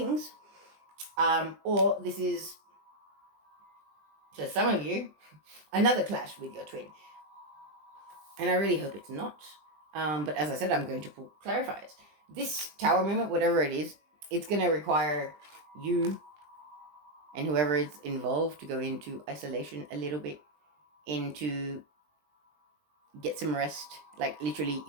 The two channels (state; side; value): late; left; 20 ms